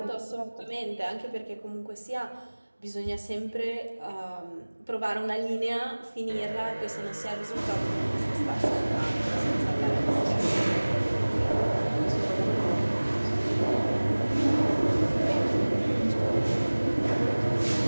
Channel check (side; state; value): both; inverted; correlation -1.00